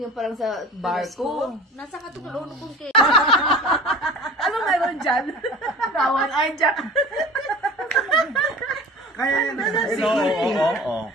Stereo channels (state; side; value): normal; both; correlation 0.39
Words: parang sa barko. Nasa katukulong kong kay. Ano meron dyan? Kawan ay dyan. Kaya yan. Oo.